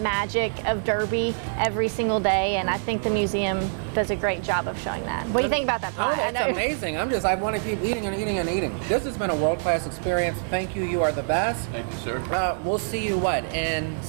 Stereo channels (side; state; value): left; silent; digital silence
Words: of Derby every single day, and I think the museum does a great job of showing that. What do you think about that? Oh, pie? it's amazing. I want to keep eating and eating and eating. This has been a world-class experience. Thank you. You are the best. Thank you, sir. We'll see you, in